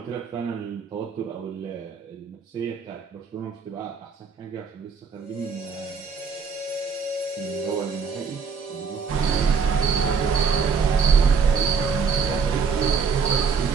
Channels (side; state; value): left; quieter; 5.8 dB